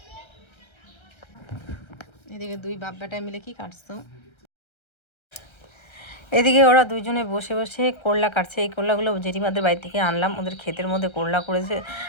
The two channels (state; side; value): late; right; 1.3 ms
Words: এদিকে দুই বাপ বেটা মিলে কি কাটছো এদিকে ওরা দুইজনে বসে বসে করলা কাটছে এই করলাগুলো জেঠিমাদের বাড়ি থেকে আনলাম ওদের ক্ষেতের মধ্যে করলা করেছে